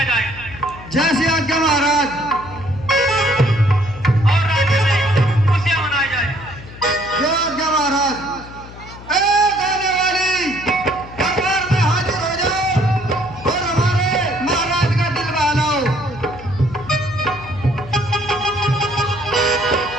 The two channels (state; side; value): noise; left; hum, 16 dB below the sound